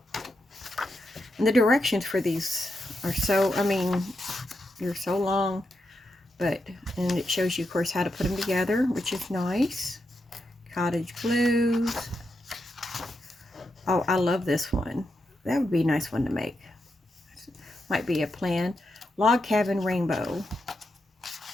And the directions for these are so, they're so long. And it shows you, of course, how to put them together, which is nice. Cottage blues. Oh, I love this one. That would be a nice one to make. Might be a plan. Log cabin rainbow.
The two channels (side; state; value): both; normal; correlation 0.85